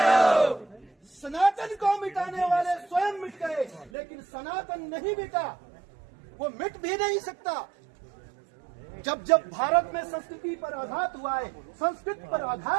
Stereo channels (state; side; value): drops out; left; at 3.9 s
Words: सनातन को मिटाने वाले स्वयं मिट गए, लेकिन सनातन नहीं मिटा, वो मिट भी नहीं सकता। जब जब भारत में संस्कृति पर आघात हुआ है, संस्कृत पर